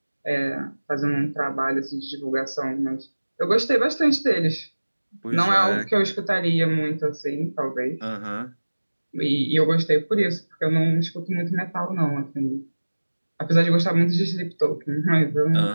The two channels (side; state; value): both; inverted; correlation -1.00